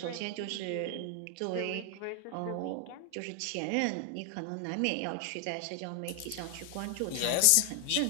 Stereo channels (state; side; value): different; both; correlation 0.00